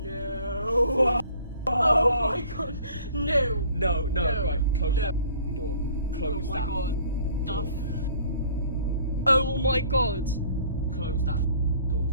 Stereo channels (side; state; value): both; inverted; correlation -0.54